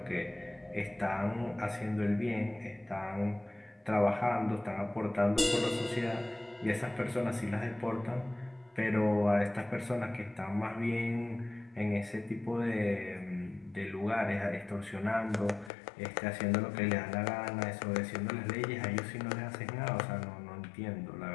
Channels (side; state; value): right; drops out; at 15.7 s